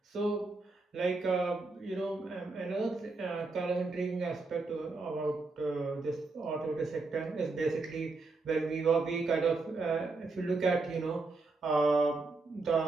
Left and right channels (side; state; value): left; quieter; 3.6 dB